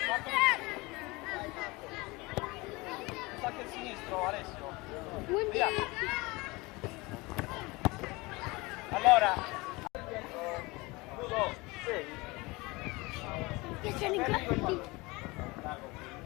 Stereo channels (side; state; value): right; quieter; 23.7 dB